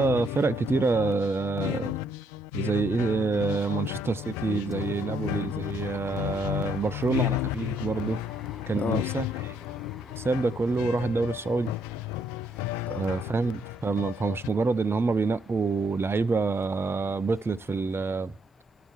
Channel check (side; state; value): both; normal; correlation 0.72